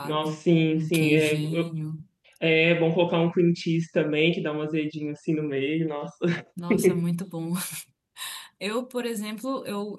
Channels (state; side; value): identical; both; correlation 1.00